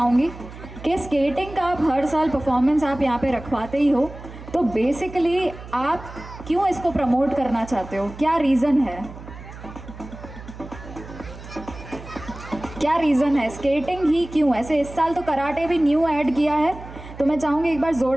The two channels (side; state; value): right; noise; hum, 15 dB below the sound